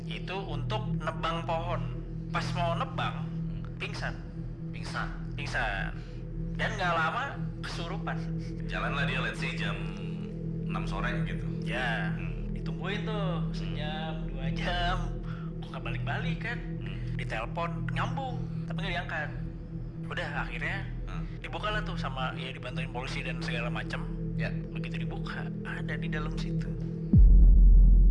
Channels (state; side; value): identical; both; correlation 1.00